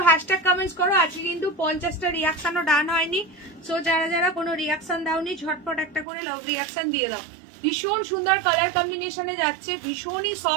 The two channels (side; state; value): left; drops out; at 6.1 s